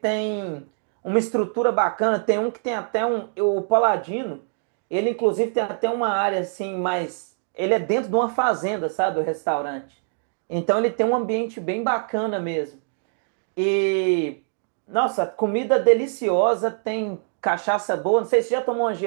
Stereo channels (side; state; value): left; silent; digital silence